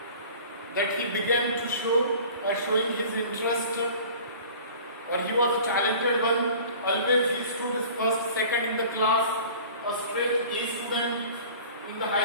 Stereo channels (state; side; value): inverted; both; correlation -0.44